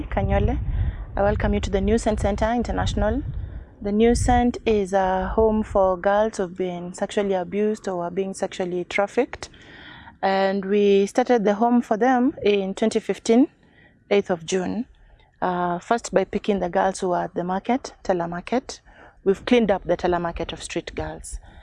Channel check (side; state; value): both; identical; correlation 1.00